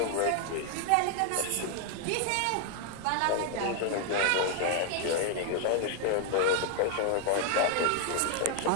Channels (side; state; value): both; different; correlation 0.00